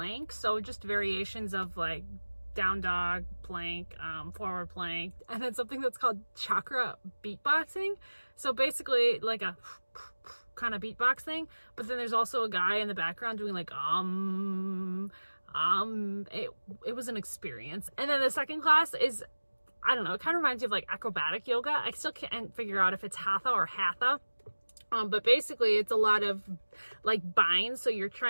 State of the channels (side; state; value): both; inverted; correlation -1.00